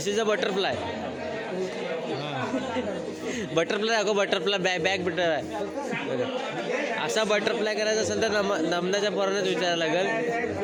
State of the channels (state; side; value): identical; both; correlation 1.00